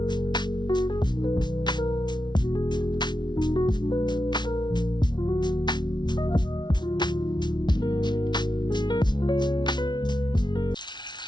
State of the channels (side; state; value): right; late; 0.21 ms